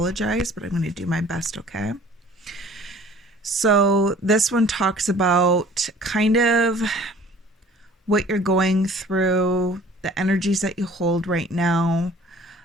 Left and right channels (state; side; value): normal; both; correlation 0.51